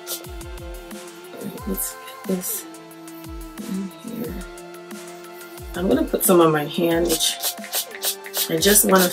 Let's get this in here. I'm gonna put some on my hand, which I just want to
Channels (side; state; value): both; identical; correlation 1.00